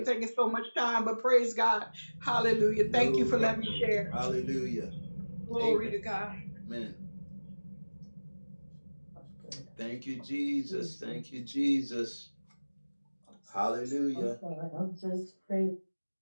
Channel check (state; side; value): inverted; both; correlation -1.00